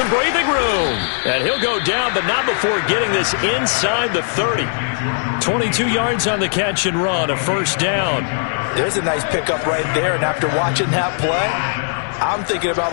breathing room. And he'll go down, but not before getting this inside the 30. 22 yards on the catch and run, a first down. There's a nice pickup right there, and after watching that play, I'm thinking about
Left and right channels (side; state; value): right; silent; 67 dB below the other